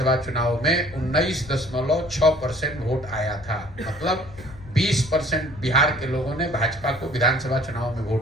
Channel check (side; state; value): left; noise; rumble, 18 dB below the sound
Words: चुनाव में 19.6% वोट आया था। मतलब 20% बिहार के लोगों ने भाजपा को विधानसभा चुनाव में